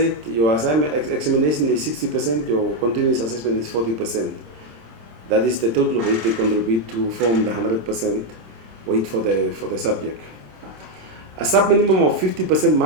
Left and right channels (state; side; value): late; left; 26 ms